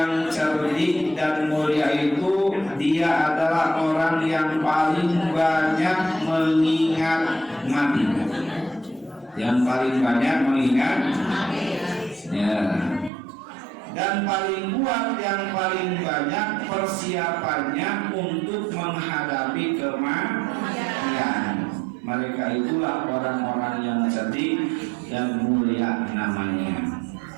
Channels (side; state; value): left; drops out; at 13.1 s